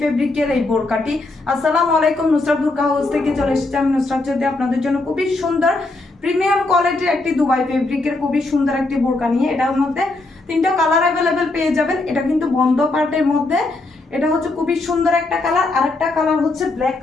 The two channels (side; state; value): right; quieter; 3.1 dB